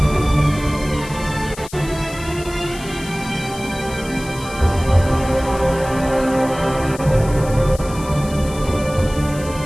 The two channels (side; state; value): left; noise; hiss, 16 dB below the sound